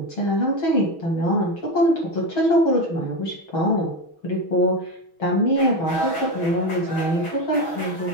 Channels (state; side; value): late; right; 6.2 ms